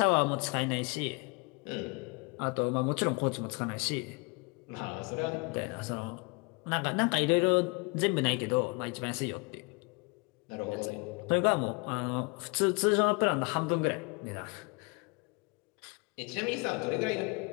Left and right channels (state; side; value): quieter; right; 29.9 dB